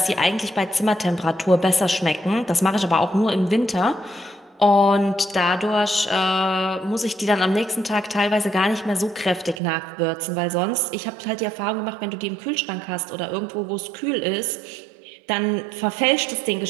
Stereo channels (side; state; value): left; drops out; at 9.6 s